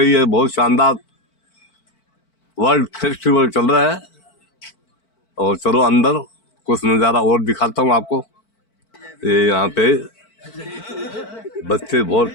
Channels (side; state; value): right; late; 4.5 ms